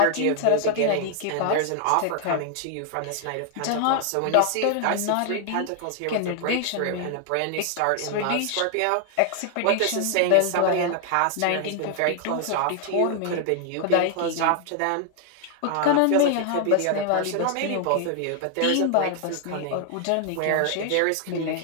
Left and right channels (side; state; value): both; different; correlation 0.00